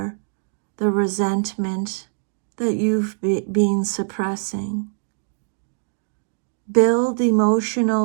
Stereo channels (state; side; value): silent; left; digital silence